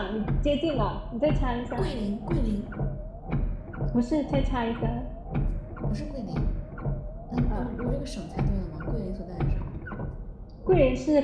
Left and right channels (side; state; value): both; identical; correlation 1.00